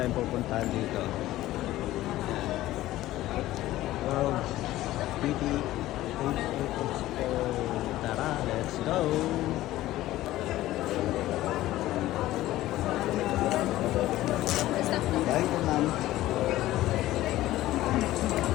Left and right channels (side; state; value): right; quieter; 15.6 dB